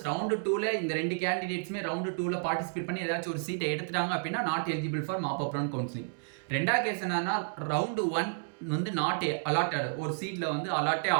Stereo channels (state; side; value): silent; left; digital silence